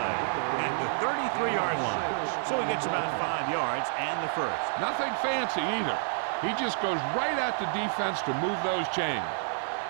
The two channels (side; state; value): left; silent; digital silence